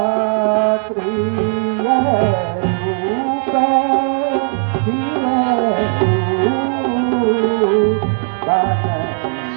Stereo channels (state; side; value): silent; left; digital silence